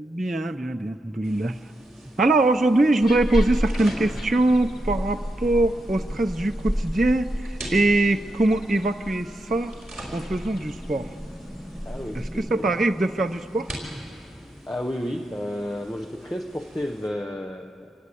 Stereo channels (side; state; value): both; normal; correlation 0.85